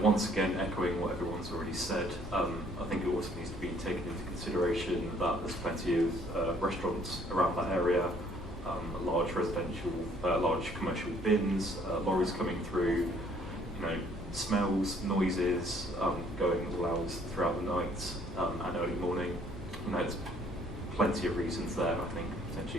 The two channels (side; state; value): both; normal; correlation 0.61